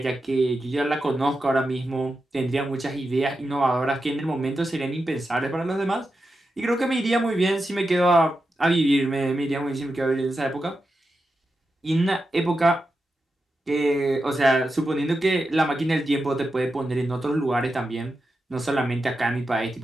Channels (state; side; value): normal; both; correlation 0.89